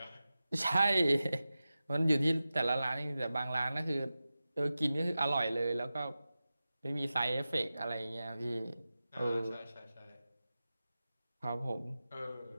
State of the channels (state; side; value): inverted; both; correlation -0.94